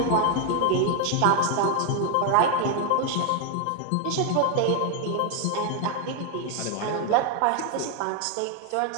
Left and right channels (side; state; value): both; different; correlation 0.01